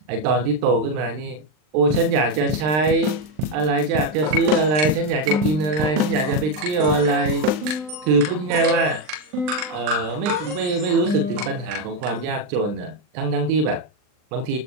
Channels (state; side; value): late; left; 39 ms